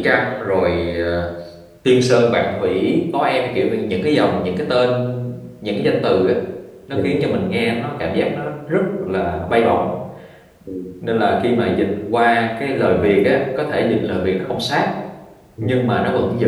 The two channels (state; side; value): identical; both; correlation 1.00